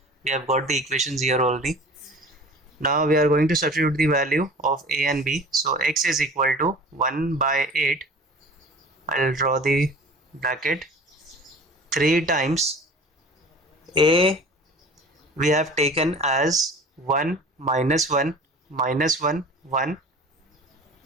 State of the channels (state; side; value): normal; both; correlation 0.41